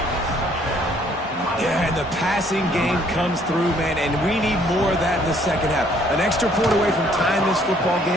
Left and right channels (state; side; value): normal; both; correlation 0.63